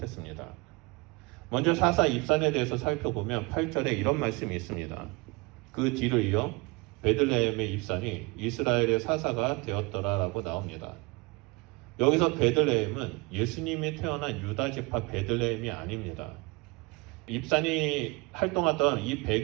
먼저 사사 입산에 대해서 살펴보면 8절에 이런 말씀이 있습니다. 그 뒤를 이어 베들레헴의 입산이 이스라엘의 사사가 되었더라라고 나옵니다. 여기서 베들레헴은 예수님이 태어난 유다 지파 베들레헴이 아닙니다. 입산이 활동하던 이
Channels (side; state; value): left; quieter; 26.7 dB